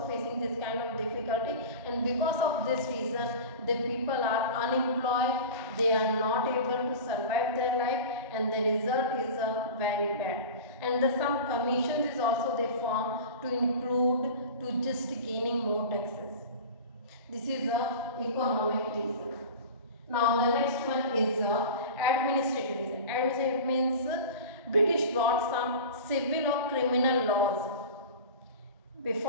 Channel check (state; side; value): inverted; both; correlation -0.33